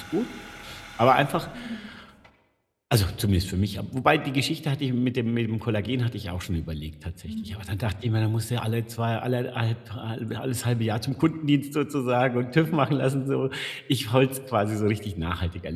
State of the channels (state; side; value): identical; both; correlation 1.00